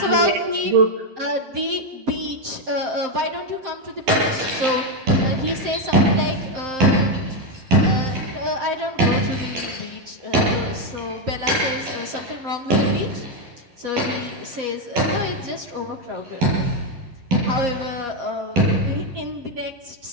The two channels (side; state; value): left; late; 11 ms